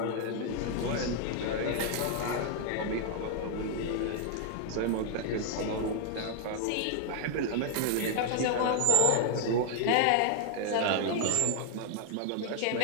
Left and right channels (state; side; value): different; both; correlation 0.00